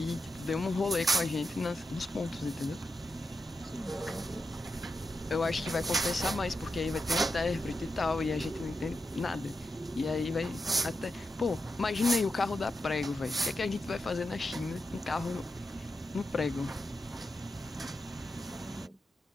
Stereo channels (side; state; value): both; normal; correlation 0.87